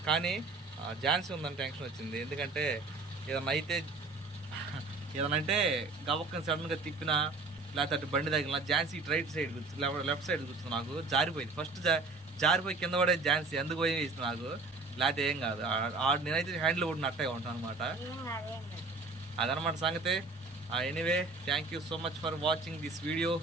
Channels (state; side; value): quieter; left; 3.7 dB